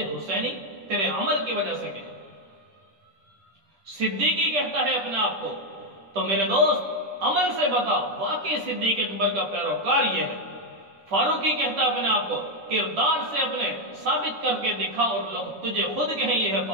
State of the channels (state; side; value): late; left; 10 ms